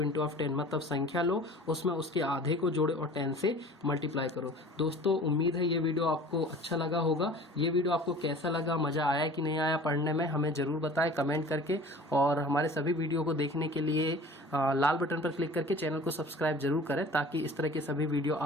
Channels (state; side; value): normal; both; correlation 0.43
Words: into of 10, मतलब संख्या लो उसमें उसके आधे को जोड़े और 10 से मल्टीप्लाई करो। दोस्तों उम्मीद है ये वीडियो आपको अच्छा लगा होगा। ये वीडियो आपको कैसा लगा, मजा आया कि नहीं आया पढ़ने में, हमें जरूर बताएं कमेंट करके। और हमारे सभी वीडियो को देखने के लिए लाल बटन पर क्लिक करके चैनल को सब्सक्राइब जरूर करें ताकि इस तरह के सभी वीडियो